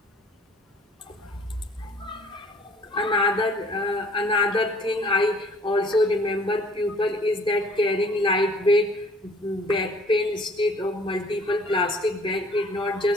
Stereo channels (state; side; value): normal; both; correlation 0.55